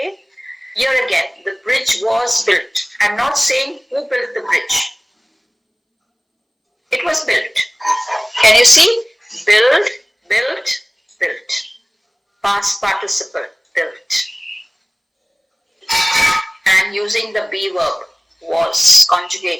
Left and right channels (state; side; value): identical; both; correlation 1.00